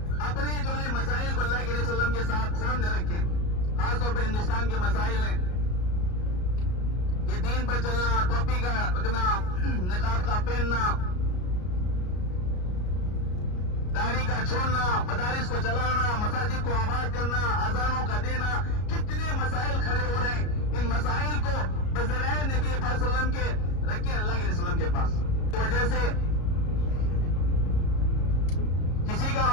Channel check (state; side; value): late; right; 33 ms